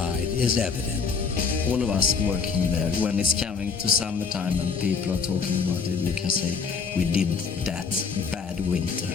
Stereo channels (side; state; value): right; quieter; 5.4 dB